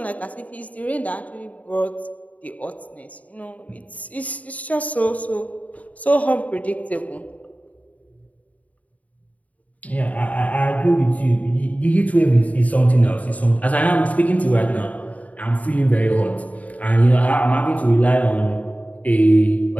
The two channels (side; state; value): right; late; 0.071 ms